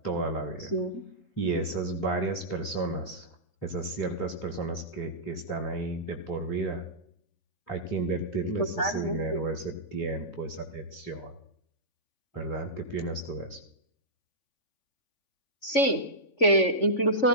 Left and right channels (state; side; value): late; right; 3.5 ms